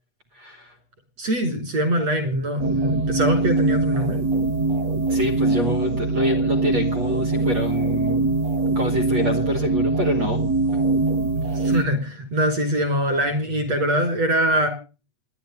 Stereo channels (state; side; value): late; left; 8.3 ms